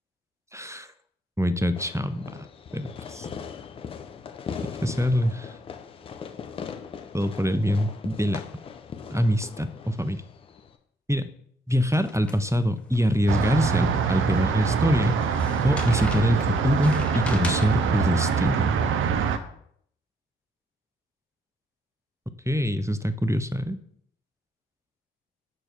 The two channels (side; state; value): both; normal; correlation 0.71